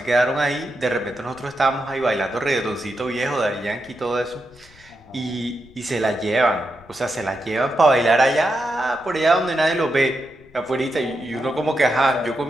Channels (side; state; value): left; noise; rumble, 26 dB below the sound